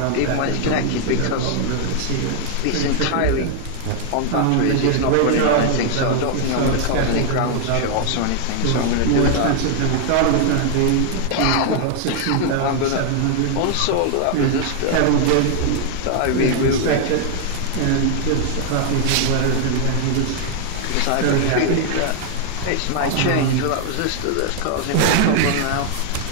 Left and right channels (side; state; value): both; different; correlation 0.00